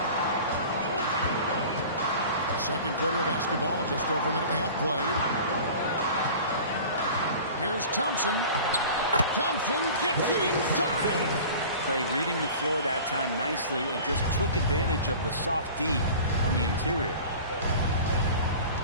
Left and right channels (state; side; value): inverted; both; correlation -0.40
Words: Second quarter of basketball. Just over a minute and a half played. Here's Thompson. Thompson gets it inside. Klay reading the floor that time nicely and just took advantage of the soft D on the interior.